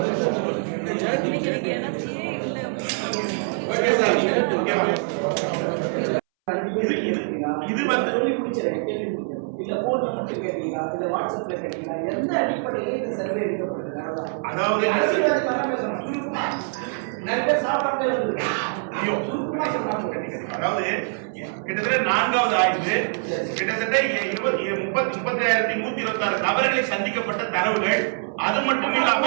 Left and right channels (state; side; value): silent; left; 62 dB below the other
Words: வந்து இல்ல போன் மட்டும் கேட்டீங்களா இல்ல வாட்ஸ்அப்ல கேட்டீங்களா எந்த அடிப்படையில் இந்த சர்வே எடுக்கப்படுது? அதாவது நிறைய பேர் சாப்பிடாமலே அதாவது கிட்டத்தட்ட 4வது ஆய்வு கிட்டத்தட்ட 35,126 நபர்களை சந்திக்கப்பட்ட தரவுகள். அது மட்டும் இல்லாம